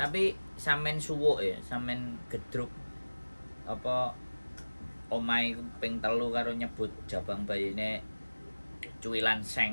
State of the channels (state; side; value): inverted; both; correlation -1.00